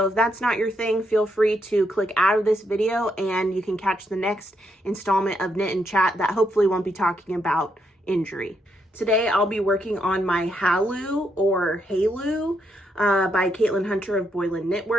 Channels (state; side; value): normal; both; correlation 0.78